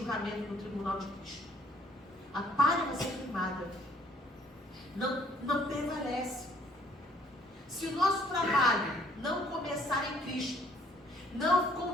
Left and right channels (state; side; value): normal; both; correlation 0.62